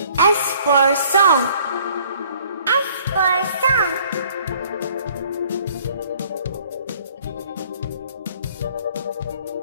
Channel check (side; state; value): both; inverted; correlation -0.57